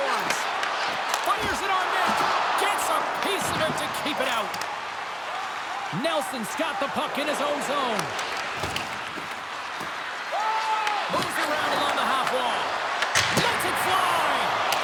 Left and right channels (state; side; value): identical; both; correlation 1.00